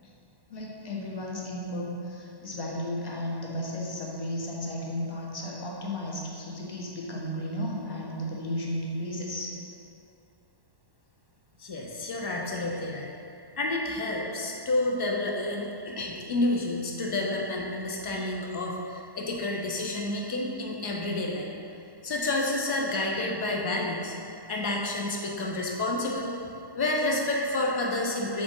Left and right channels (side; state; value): left; late; 1.1 ms